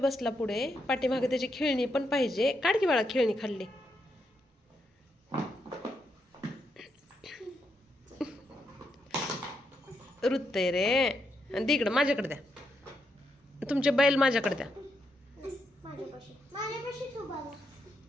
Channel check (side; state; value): both; normal; correlation 0.81